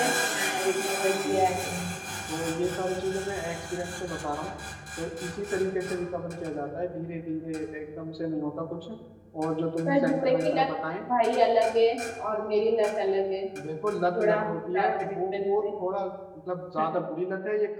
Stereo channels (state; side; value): identical; both; correlation 1.00